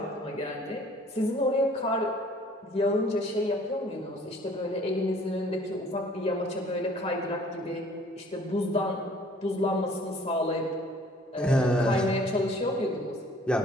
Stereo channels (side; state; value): both; normal; correlation 0.54